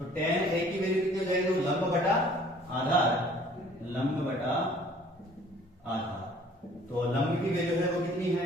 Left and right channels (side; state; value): both; normal; correlation 0.54